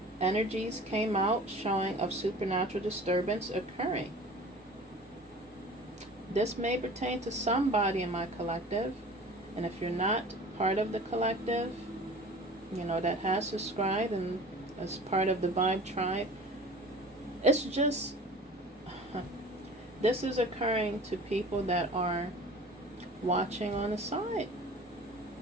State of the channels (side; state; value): both; normal; correlation 0.42